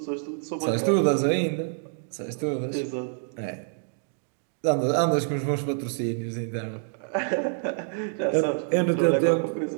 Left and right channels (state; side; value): silent; left; digital silence